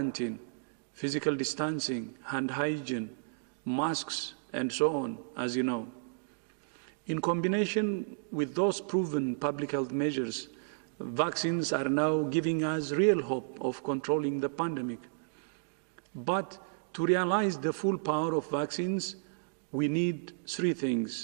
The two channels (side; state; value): left; silent; digital silence